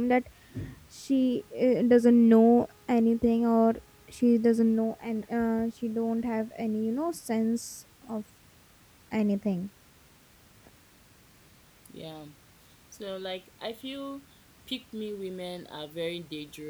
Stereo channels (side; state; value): both; identical; correlation 1.00